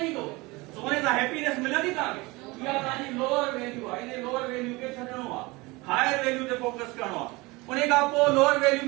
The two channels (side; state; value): left; quieter; 23.4 dB